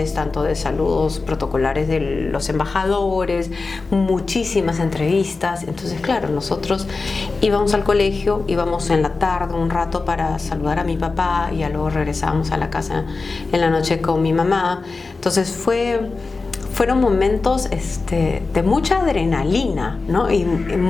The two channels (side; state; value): right; quieter; 3.9 dB